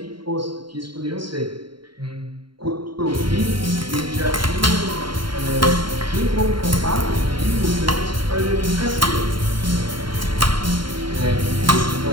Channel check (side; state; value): left; late; 0.73 ms